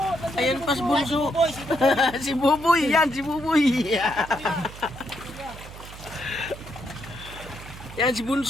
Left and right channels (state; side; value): noise; right; hum, 15 dB below the sound